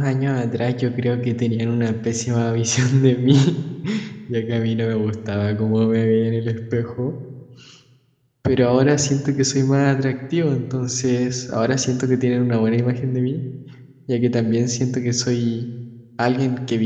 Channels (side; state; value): both; identical; correlation 1.00